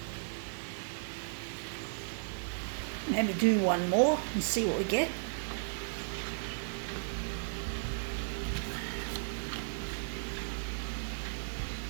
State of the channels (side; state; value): left; silent; 54 dB below the other